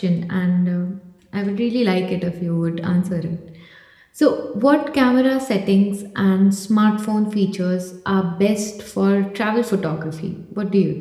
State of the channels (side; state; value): both; identical; correlation 1.00